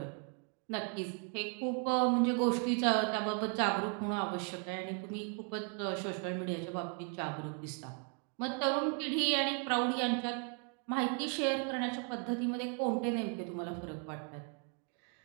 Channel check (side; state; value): left; quieter; 38.3 dB